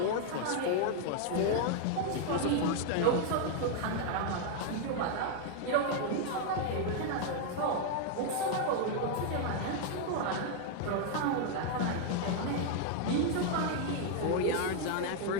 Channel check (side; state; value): both; different; correlation 0.00